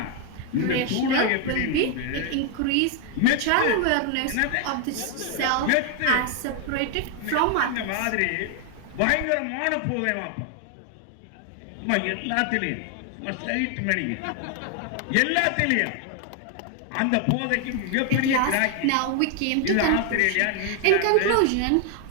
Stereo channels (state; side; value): different; both; correlation 0.00